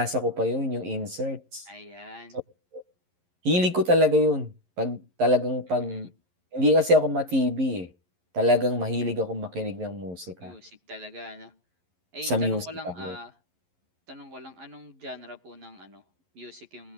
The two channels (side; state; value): left; late; 11 ms